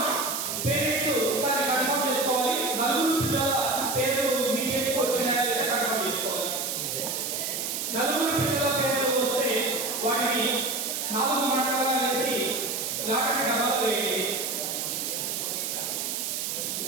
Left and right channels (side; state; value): right; noise; hiss, 2 dB below the sound